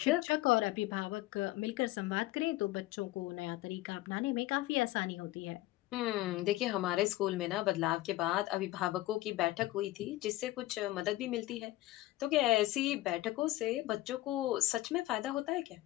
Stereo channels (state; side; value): quieter; right; 17.2 dB